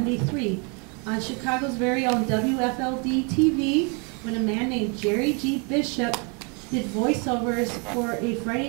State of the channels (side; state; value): left; quieter; 34.2 dB